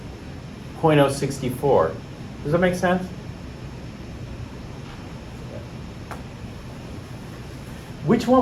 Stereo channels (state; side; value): identical; both; correlation 1.00